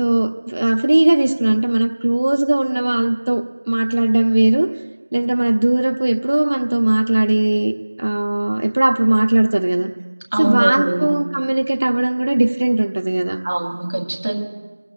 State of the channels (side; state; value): both; inverted; correlation -1.00